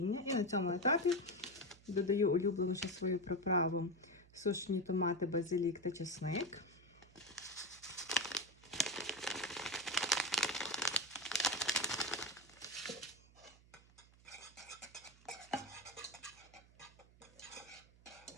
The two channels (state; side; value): noise; right; hum, 25 dB below the sound